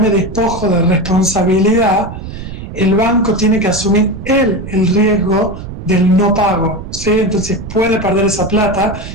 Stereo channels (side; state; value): right; noise; rumble, 10 dB below the sound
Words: me despojo de responsabilidad, el banco tiene que asumir el riesgo del no pago, ¿sí? Entonces puede perder esa plata